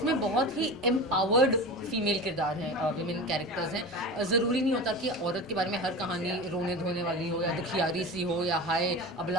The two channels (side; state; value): both; normal; correlation 0.30